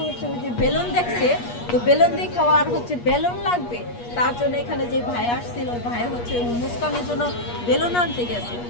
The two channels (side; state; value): right; late; 8.4 ms